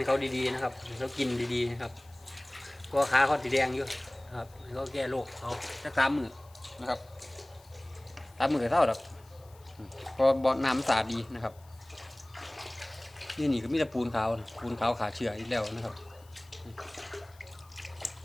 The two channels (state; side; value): noise; left; hiss, 28 dB below the sound